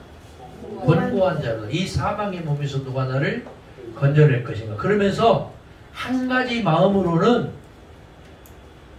권고한 자로 이 사망의 몸에서 누가 나를 건져낼 것인가. 그러면서 한 가지 마음으로는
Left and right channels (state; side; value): identical; both; correlation 1.00